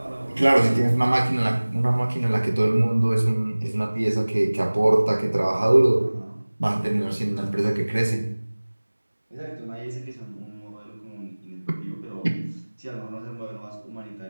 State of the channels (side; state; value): both; inverted; correlation -1.00